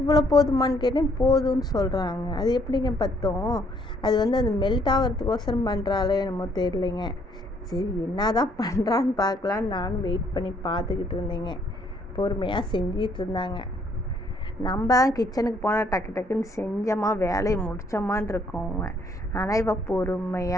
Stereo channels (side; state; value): both; normal; correlation 0.66